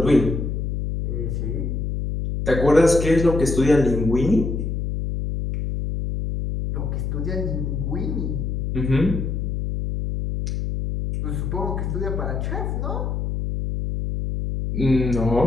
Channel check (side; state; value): left; noise; hum, 2 dB below the sound